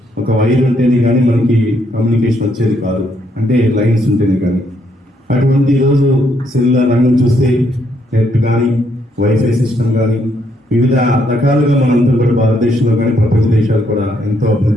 ఒక వైర్ ఉంటేనే కానీ మనకి కమ్యూనికేషన్ వచ్చేది కాదు, అంటే లైన్స్ ఉంటేనే కానీ. అటువంటి ఈరోజు సెల్యులార్ రంగం చూస్తే నెట్ కానీ, వైఫై సిస్టమ్ కానీ వివిధ రకాలుగా మనంతా కూడా భారతదేశంలో కానీ ప్రపంచ దేశాలు కూడా ఎంతో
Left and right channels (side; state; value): both; normal; correlation 0.73